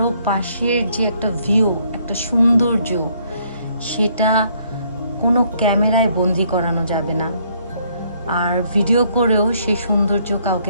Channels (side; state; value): both; inverted; correlation -0.68